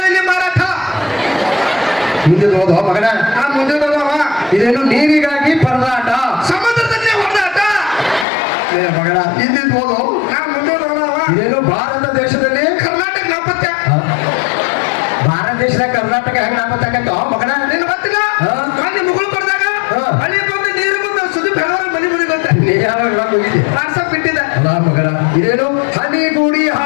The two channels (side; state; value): right; drops out; at 8.2 s